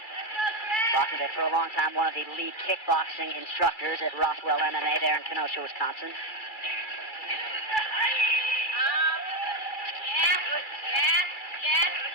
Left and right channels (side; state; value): right; late; 2.4 ms